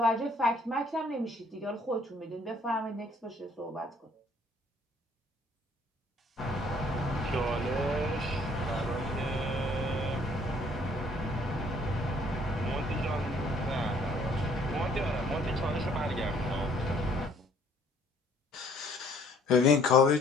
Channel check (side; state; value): both; normal; correlation 0.60